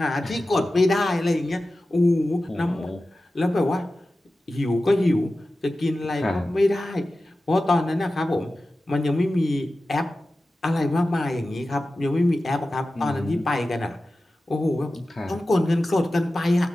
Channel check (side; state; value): both; normal; correlation 0.94